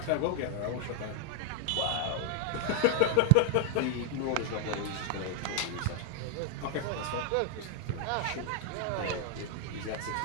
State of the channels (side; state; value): both; different; correlation 0.00